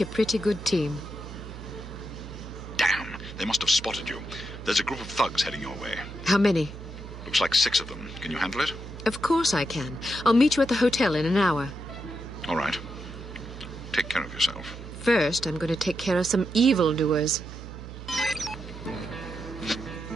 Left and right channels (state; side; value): noise; right; hum, 12 dB below the sound